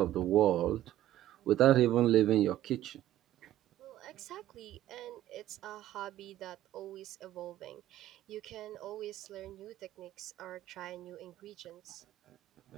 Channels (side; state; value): left; quieter; 13.4 dB